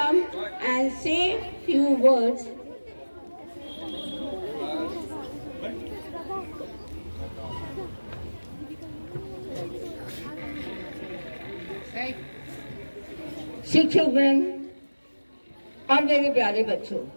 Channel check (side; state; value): both; inverted; correlation -1.00